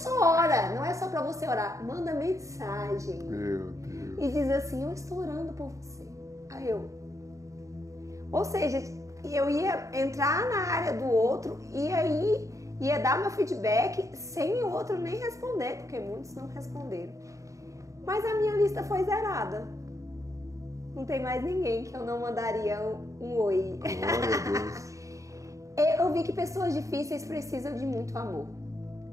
ora, não é só para você orar, manda mensagem. Meu Deus. E diz assim, eu estou orando por você. Aí ou seja, eu ia entrar na área do outro e aí ia dar meu feedback sem o outro nem responder, porque muitos não responderam. Mas a minha lista foi zerada. Não tem mais ninguém que eu não mandaria um oi. Eu vi que pessoas difíceis precisam de muito amor.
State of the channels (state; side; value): late; left; 0.16 ms